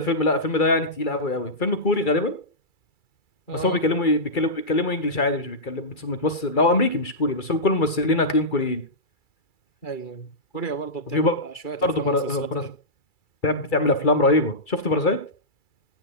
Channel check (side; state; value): right; late; 2.3 ms